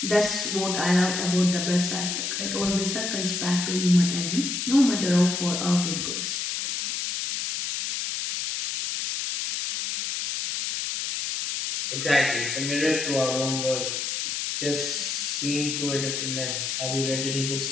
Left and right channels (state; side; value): noise; left; hiss, 2 dB below the sound